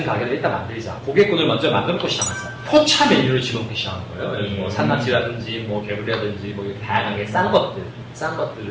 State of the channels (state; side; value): identical; both; correlation 1.00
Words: 가게를 일단 만들자. 고객군을 먼저 만들고 시작하자. 포차 메뉴를 집어넣기 시작한 거예요. 뭐 산낙지라든지, 뭐 개구리라든지, 뭐 이렇게 다양하게 싼